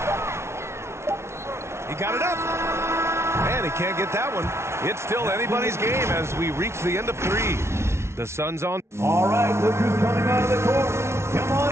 He got it up. And he can't get that one. It's still anybody's game as we reach the end of 3. The Suns on. All right, look who's coming out of the court. Come on.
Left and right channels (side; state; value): left; late; 0.13 ms